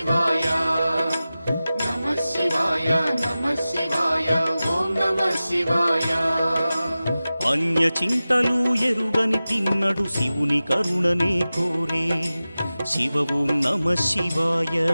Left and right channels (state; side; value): inverted; both; correlation -0.96